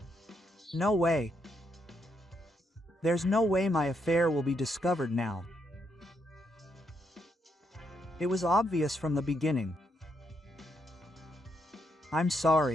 No way. There's no way my affair will be discovered now. It was obvious from the beginning. I'm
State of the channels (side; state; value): both; normal; correlation 0.78